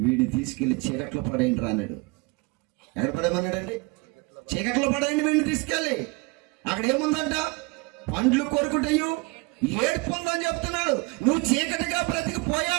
వీడిని తీసుకెళ్లి చీకట్లో పడేయండి రా అన్నాడు. ఎక్కడ పడేయమన్నాడండి? చీకట్లో పడేయండి వీడిని తీసుకెళ్ళి. అక్కడ ఏముందంట? పండ్లు కొరుకుటయు ఏడుపు ఉందని చెప్తున్నాడు. నువ్వు చీకటిగా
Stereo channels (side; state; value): left; quieter; 26.3 dB